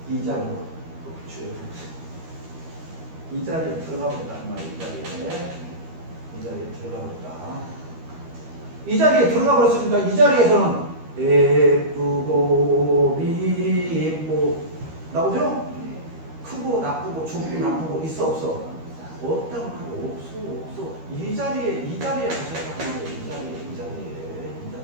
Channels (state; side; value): late; left; 13 ms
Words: 이 자리로, 이 자리에 들어가 버렸다. 이 자리에 들어가 버렸다. 이 자리에 들어가 버렸으니까 이 자리에서는 예쁘고 미쁘고 나오죠? 크고 나쁘고 좋고 나쁘고 있어 없어? 없다고 말이야. 없어. 이 자리에 가셨다고 말이야. 이 자리에